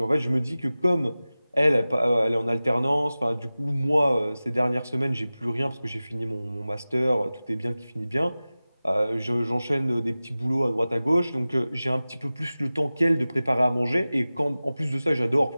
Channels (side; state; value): both; inverted; correlation -0.97